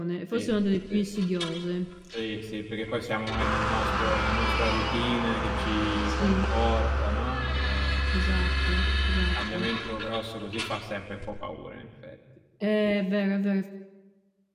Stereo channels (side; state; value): both; identical; correlation 1.00